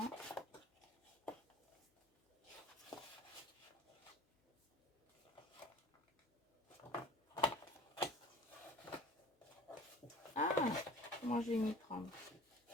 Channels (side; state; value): both; normal; correlation 0.45